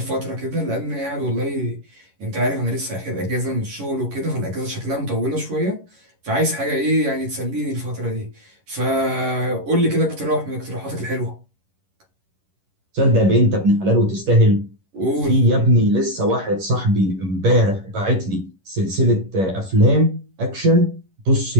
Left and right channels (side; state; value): left; late; 11 ms